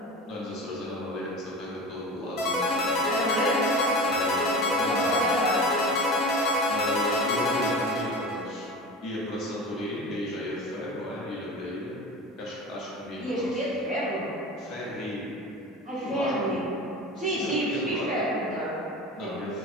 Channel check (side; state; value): both; normal; correlation 0.32